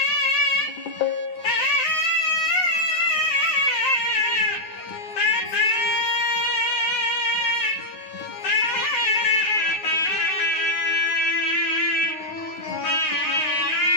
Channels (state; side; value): late; right; 9.5 ms